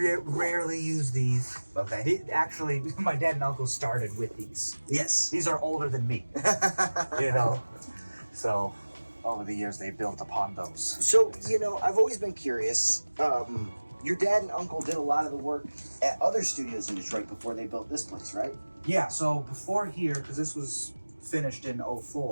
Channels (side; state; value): both; inverted; correlation -1.00